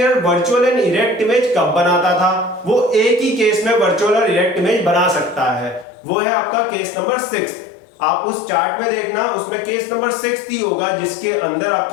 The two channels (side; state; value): right; drops out; at 5.9 s